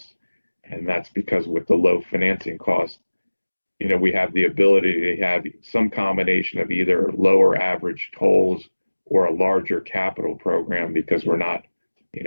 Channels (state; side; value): inverted; both; correlation -1.00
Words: And that's because with the low financing costs, we have the ability to have some combination of either lower average tolls or a larger capital program because we're not,